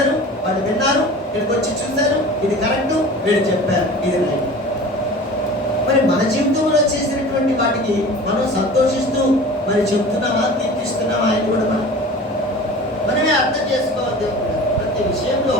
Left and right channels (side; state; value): both; normal; correlation 0.39